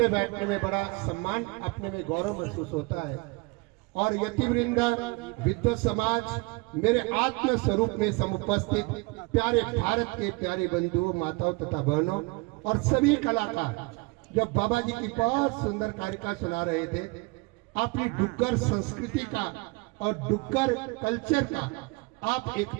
बैठने में बड़ा सम्मान, अपने में गौरव महसूस होता है। और यतिवृंद, विद्वत समाज, मेरे आत्म स्वरूप में समुपस्थित प्यारे भारत के प्यारे बंधुओं, माताओं तथा बहनों और सभी कलाकार जब बाबा जी की बहुत सुंदर कारिका सुना रहे थे, अपनी डुग्गर संस्कृति का और डुग्गर कल्चर का आप एक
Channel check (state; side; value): quieter; left; 26.8 dB